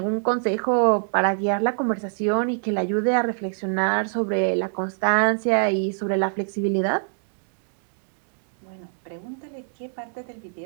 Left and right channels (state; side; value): silent; left; digital silence